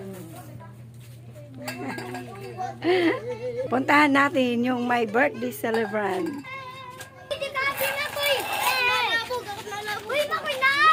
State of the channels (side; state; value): both; identical; correlation 1.00